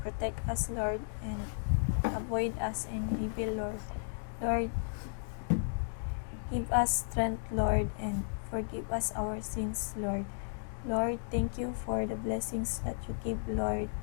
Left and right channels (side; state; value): right; silent; digital silence